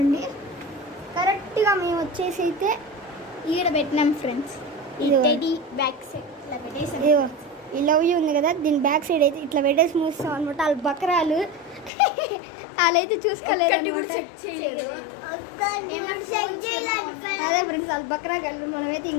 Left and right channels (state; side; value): drops out; right; at 11.9 s